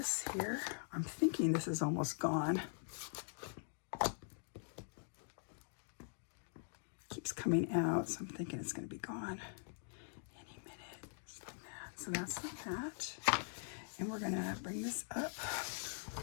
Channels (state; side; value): silent; right; digital silence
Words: here. I'm thinking this is almost gone. Keeps coming out, so I'm thinking it's going to be gone any minute. Just like that. So that's like that. And we're going to bring this up.